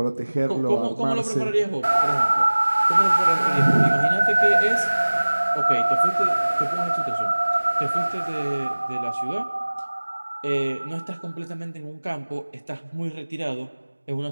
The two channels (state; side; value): inverted; both; correlation -1.00